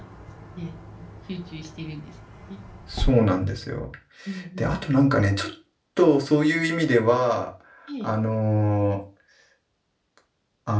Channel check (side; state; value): both; identical; correlation 1.00